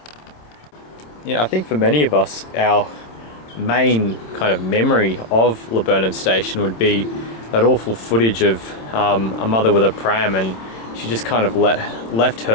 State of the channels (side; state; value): right; late; 26 ms